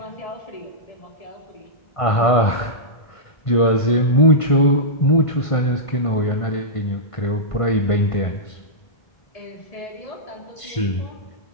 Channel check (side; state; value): right; late; 1.5 ms